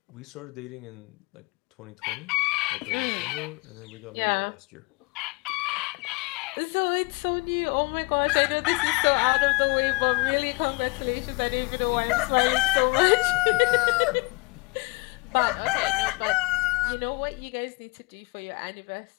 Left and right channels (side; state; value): right; quieter; 28.4 dB